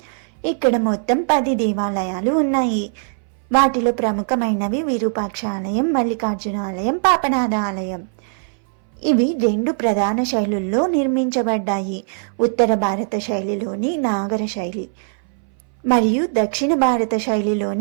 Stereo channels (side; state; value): left; silent; 61 dB below the other